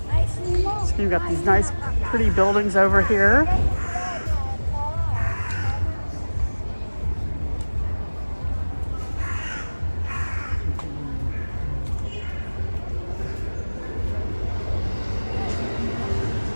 So you've got these nice pretty buildings over here.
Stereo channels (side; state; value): both; inverted; correlation -1.00